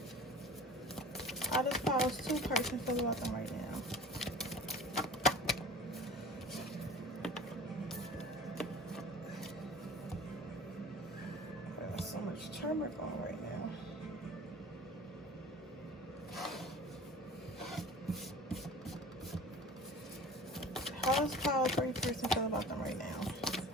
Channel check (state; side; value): normal; both; correlation 0.41